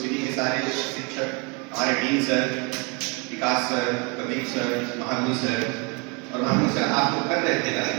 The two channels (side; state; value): left; quieter; 32.0 dB